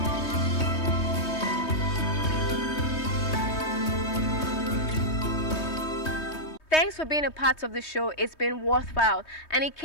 Thanks for being a part of the show. It's been worthwhile. And in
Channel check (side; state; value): right; late; 3.2 ms